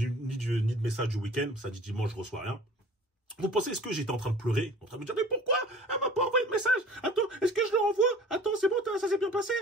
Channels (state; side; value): normal; both; correlation 0.46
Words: de message du week-end, ça dit dimanche, je reçois rien. Vous pensez, est-ce que j'étais en train de pleurer? En train de me dire, mais pourquoi elle m'a pas envoyé de message? Attends, est-ce que je le renvoie? Attends, c'est bon, ça s'est bien passé?